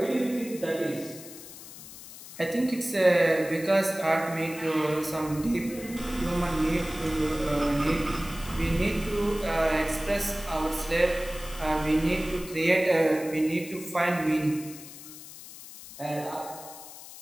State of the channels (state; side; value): noise; left; hiss, 15 dB below the sound